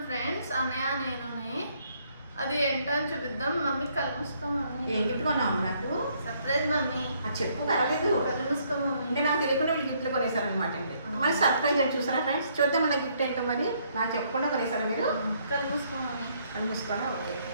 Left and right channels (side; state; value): both; inverted; correlation -0.68